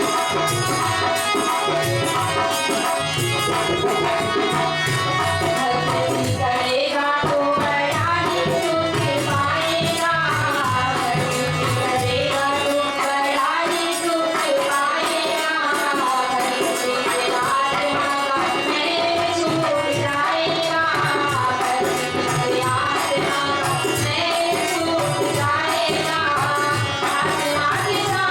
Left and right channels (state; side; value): identical; both; correlation 1.00